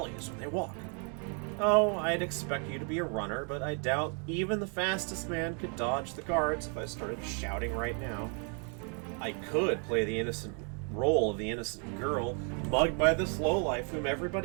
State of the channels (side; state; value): left; quieter; 39.8 dB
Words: when they walk. Oh, I'd expect you to be a runner, but I doubt even the fastest man could dodge the guards if I started shouting right now. I could play the innocent role of the innocent girl, mugged by this lowlife whom